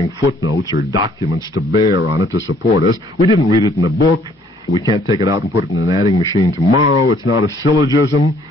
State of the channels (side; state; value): both; normal; correlation 0.62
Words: footnotes or documents to bear on it to support us. We didn't read it in a book. We can't take it out and put it in an adding machine tomorrow. It's not a syllogism.